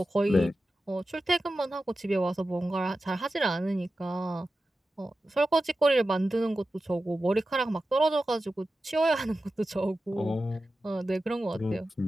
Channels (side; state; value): both; normal; correlation 0.93